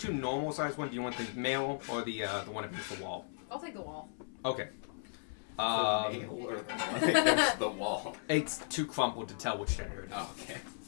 normal sized ones. Do you want the male or the one against the wall? I'll take the wall. Okay. nail or the one against the wall? It's too crumpled to tell which gender it is. Oh, okay.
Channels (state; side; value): silent; right; 54 dB below the other